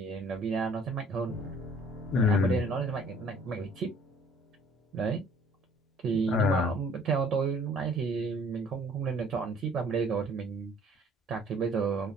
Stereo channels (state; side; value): normal; both; correlation 0.56